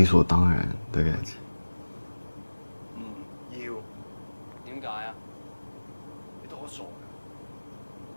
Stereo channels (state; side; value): inverted; both; correlation -1.00